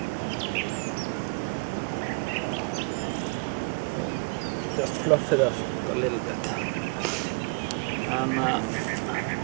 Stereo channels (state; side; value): quieter; left; 33.2 dB